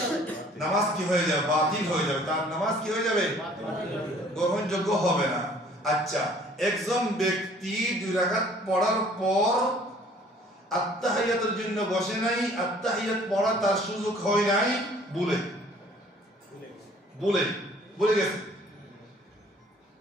নামাজ কি হয়ে যাবে? বাতিল হয়ে যাবে। তার নামাজ কি হয়ে যাবে? গ্রহণযোগ্য হবে না। আচ্ছা একজন ব্যক্তি 2 রাকাত পড়ার পর আত্তাহিয়াতের জন্য বসে নাই, আত্তাহিয়াত পড়া তার সুযোগ হয় নাই, ভুলে গেছে,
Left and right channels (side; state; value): both; normal; correlation 0.55